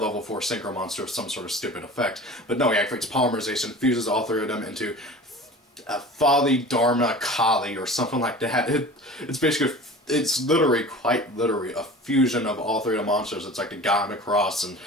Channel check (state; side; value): normal; both; correlation 0.39